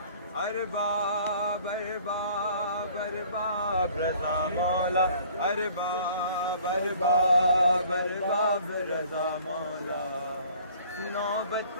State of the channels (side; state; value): both; inverted; correlation -0.54